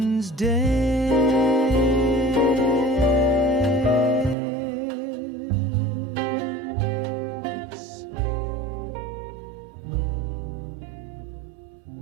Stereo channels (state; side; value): drops out; left; at 4.4 s